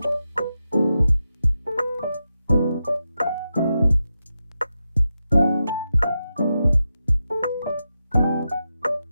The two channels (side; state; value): both; inverted; correlation -0.89